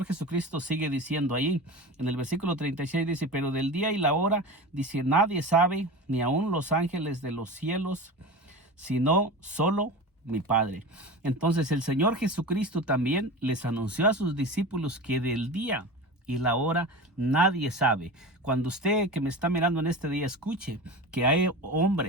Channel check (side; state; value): both; normal; correlation 0.30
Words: Jesucristo sigue diciendo ahí en el versículo 36, dice, pero del día y la hora, dice, nadie sabe, ni aun los ángeles de los cielos, sino solo mi Padre. Entonces el Señor Jesucristo también les anunció a sus discípulos que del día y la hora nadie sabe. Cuando usted que me está mirando en este día escuche que hay